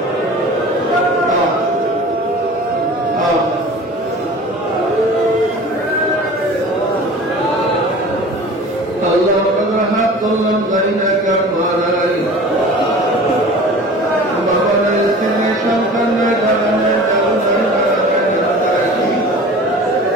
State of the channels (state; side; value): normal; both; correlation 0.41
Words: আল্লাহ আমাদের হাত ধরলাম জানি না কার মারাই, বাবা নাই, স্ত্রী সন্তান নাই, দাদা নাই, দাদু নাই,